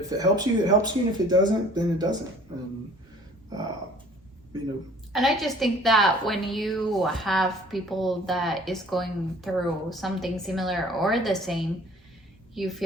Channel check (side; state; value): both; normal; correlation 0.52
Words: it helps you, it helps you, and if it doesn't, then it doesn't. And And I just think that when you have people that is going through something similar or the same, you